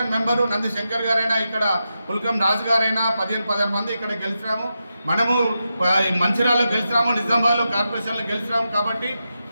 మెంబరు నంది శంకర్ గారైనా, ఇక్కడ పుల్కం రాజు గారైనా 15 మంది ఇక్కడ గెలిచినాము. మనము మంచిర్యాలలో గెలిచినాము, నిజామాబాద్లో కార్పొరేషన్లో గెలిచినాము. కాబట్టి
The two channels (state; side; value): inverted; both; correlation -0.88